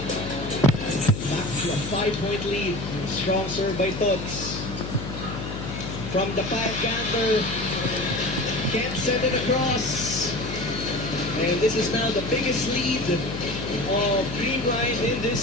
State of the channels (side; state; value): left; noise; hum, 7 dB below the sound